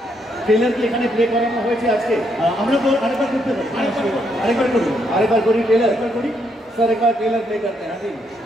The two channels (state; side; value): normal; both; correlation 0.75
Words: ট্রেলার কি এখানে প্লে করানো হয়েছে আজকে? আমরা তো আরেকবার করতে পারি, আরেকবার করি ট্রেলার করি স্যার, একবার ট্রেলার প্লে করতে हैं जी,